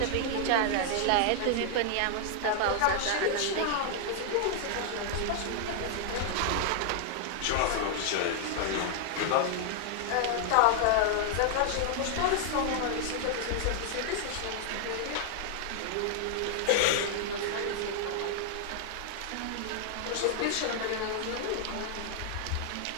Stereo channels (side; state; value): both; different; correlation 0.00